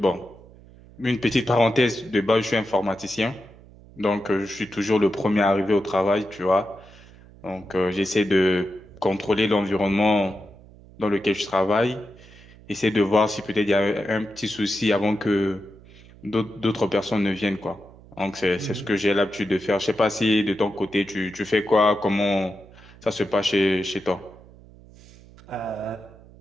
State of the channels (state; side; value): noise; right; hum, 22 dB below the sound